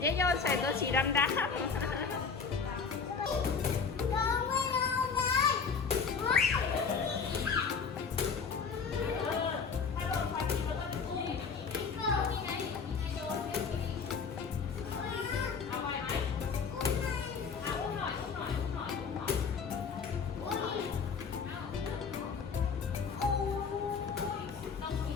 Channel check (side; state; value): right; quieter; 5.6 dB